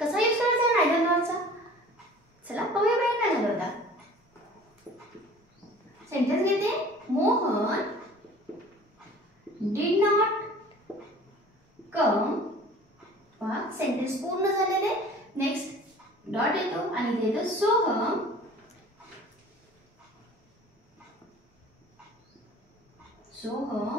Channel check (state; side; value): normal; both; correlation 0.46